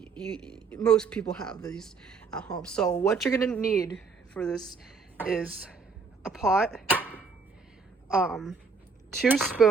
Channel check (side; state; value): left; quieter; 4.9 dB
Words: most people have these at home. So what you're gonna need for this is a pot, 2